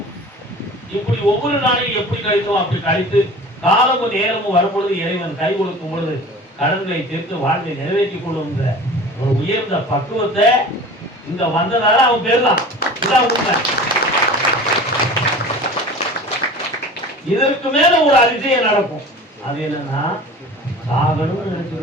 இப்படி ஒவ்வொரு நாளையும் எப்படி கழித்தோம் அப்படி கழித்து காலமும் நேரமும் வரும்பொழுது இறைவன் கை கொடுக்கும் பொழுது கடன்களை தீர்த்து வாழ்வை நிறைவேற்றிக் கொள்ளுங்கிற ஒரு உயர்ந்த பக்குவத்தை இங்க வந்ததால அவன் பேர்தான். இதான் உண்மை. இதற்கு மேல ஒரு அதிசயம் நடக்கும். அது என்னன்னா, சாகணும்னு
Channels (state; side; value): normal; both; correlation 0.39